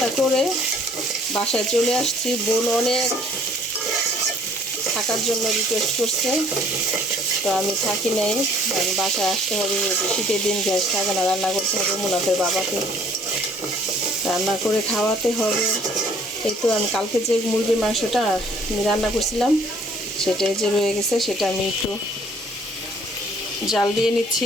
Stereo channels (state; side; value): normal; both; correlation 0.58